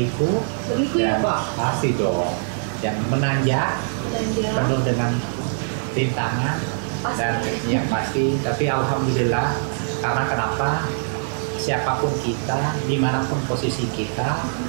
ya dan Pak? pasti dong, yang menanjak, penuh dengan rintangan dan yang pasti, tapi alhamdulillah. Karena kenapa? Siapapun kita, dimanapun posisi kita,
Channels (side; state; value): left; silent; digital silence